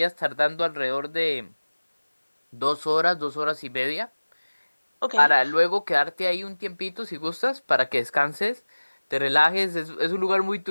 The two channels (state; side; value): inverted; both; correlation -1.00